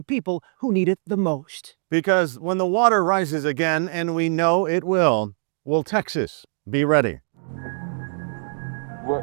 people who need it the most. Because when the water rises again, and we know it will Texas be ready? We're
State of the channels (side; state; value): left; silent; 58 dB below the other